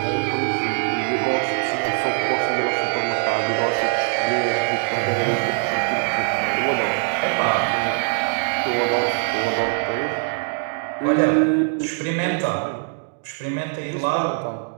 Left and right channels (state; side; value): silent; left; 64 dB below the other